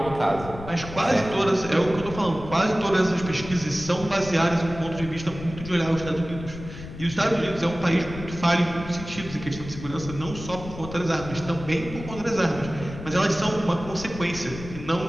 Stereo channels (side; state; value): left; noise; rumble, 12 dB below the sound